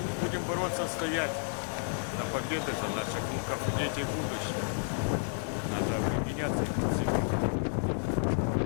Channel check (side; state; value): right; silent; 57 dB below the other